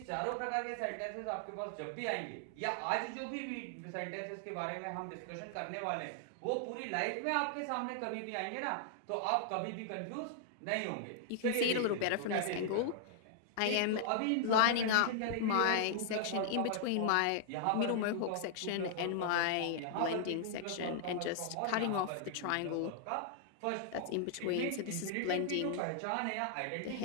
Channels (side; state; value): both; different; correlation -0.01